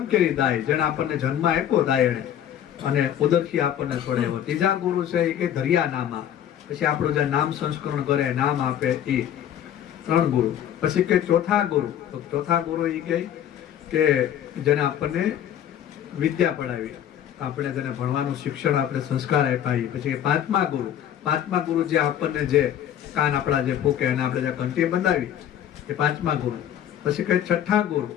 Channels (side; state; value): right; quieter; 10.3 dB